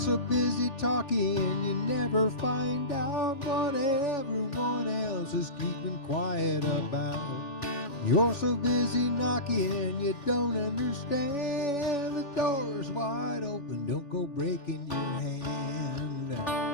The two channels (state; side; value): late; right; 3.5 ms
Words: busy talking, you never find out what everyone else is keeping quiet about. You're so busy knocking, you don't understand. The door's wide open, don't go breaking your hand.